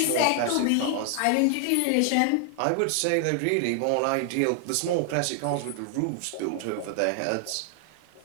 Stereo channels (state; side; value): different; both; correlation 0.00